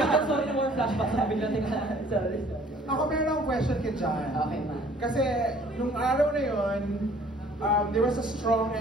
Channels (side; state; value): both; normal; correlation 0.55